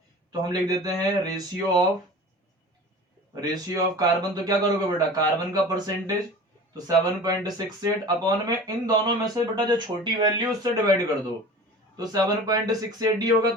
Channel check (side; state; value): both; normal; correlation 0.39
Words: तो हम लिख देते हैं रेशियो ऑफ कार्बन। तो क्या करोगे बेटा, कार्बन का परसेंटेज, तो 7.68 अपॉन में इन दोनों में से बेटा जो छोटी वैल्यू उससे डिवाइड कर दो, तो 7.68 ही होगा,